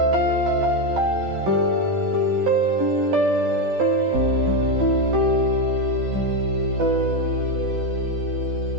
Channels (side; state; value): left; late; 12 ms